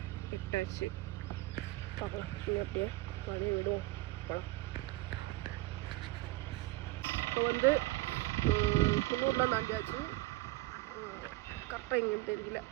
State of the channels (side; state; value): left; quieter; 19.3 dB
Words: ஆச்சு. பார்க்கலாம் நீங்கள் அப்படியே அப்படியே விடுவோம் போகலாம். இப்போ வந்து குன்னூரில் தாண்டியாச்சு. கரெக்டாக எங்கேன்னு தெரியல,